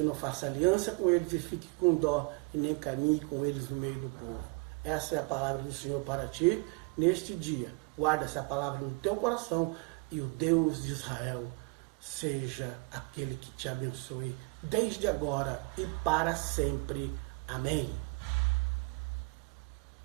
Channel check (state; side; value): quieter; left; 30.3 dB